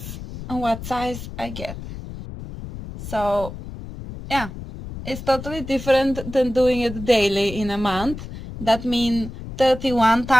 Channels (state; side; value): noise; left; rumble, 11 dB below the sound